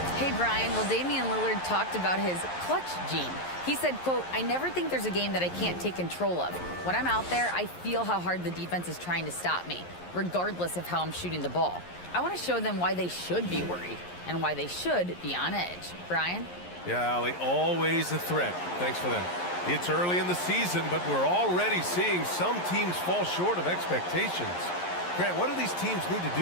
Hey, Brian. Well, Damian Lillard talked about his clutch gene. He said, quote, "I never think there's a game that I can't take control of. When I'm out there, I feel how hard the defense is trying to stop me, regardless of how I'm shooting the ball. I want to show them why they should be worried and why they should be on edge." Brian? Yeah, Allie, always a threat. Thanks for that. It's early in the season, but we're already seeing some teams fall short of expectations. Grant, what do these teams need to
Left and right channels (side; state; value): right; late; 11 ms